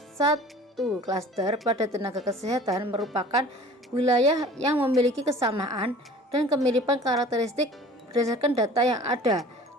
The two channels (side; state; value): both; normal; correlation 0.46